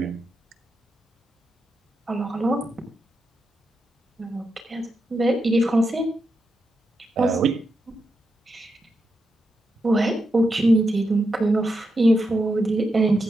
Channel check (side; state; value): both; normal; correlation 0.85